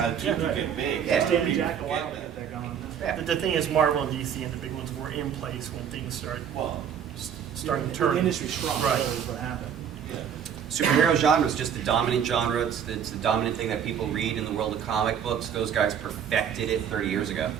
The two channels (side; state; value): left; quieter; 8.4 dB